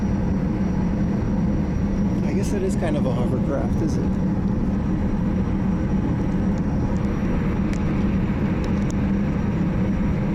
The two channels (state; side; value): identical; both; correlation 1.00